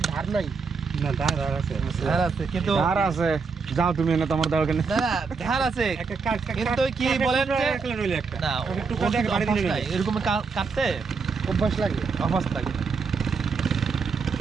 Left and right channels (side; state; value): left; quieter; 5.0 dB